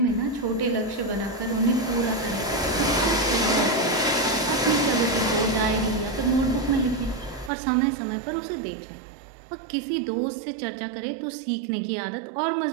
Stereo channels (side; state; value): left; drops out; at 7.5 s